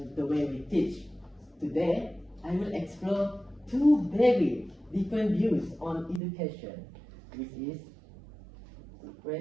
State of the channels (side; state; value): left; drops out; at 6.2 s